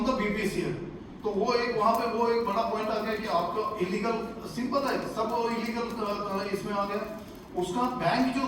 द बीपीसीएल। तो वो एक वहां पे वो एक बड़ा पॉइंट आ गया कि आपका इलीगल, सिंपल है सब इलीगल इसमें आ गया। उसका बैंक जो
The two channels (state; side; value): identical; both; correlation 1.00